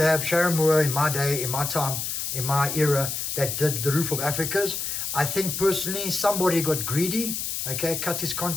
have Sharon Moore in my day, in my time, in my era that did the Roof of Africas. I think personally somebody got greedy, okay, cut his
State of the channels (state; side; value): noise; left; hiss, 3 dB below the sound